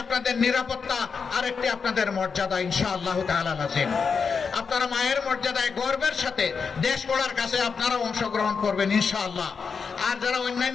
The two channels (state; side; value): quieter; right; 5.6 dB